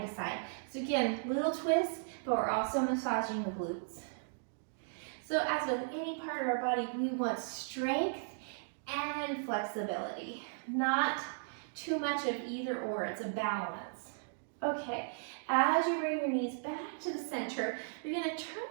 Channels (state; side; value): silent; left; digital silence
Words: to side. So again, little twist, but we're also massaging the glutes. So as with any part of our body, we want strength and flexibility, not too much of either or, it's a balance. Okay, as you bring your knees back to the center, you're gonna turn